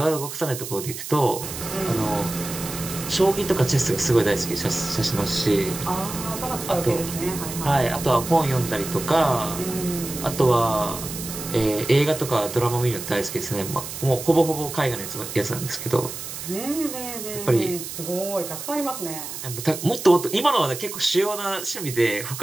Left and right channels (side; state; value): right; noise; hiss, 8 dB below the sound